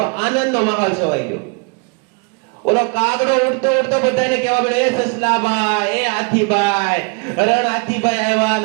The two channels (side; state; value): left; quieter; 32.5 dB